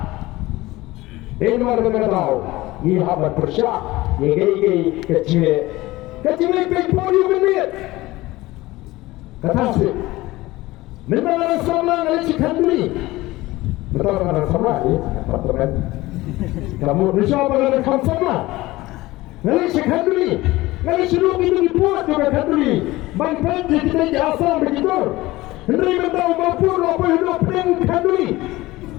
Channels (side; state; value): right; quieter; 18.9 dB